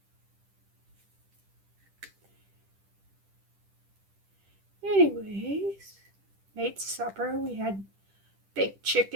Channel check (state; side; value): late; left; 10 ms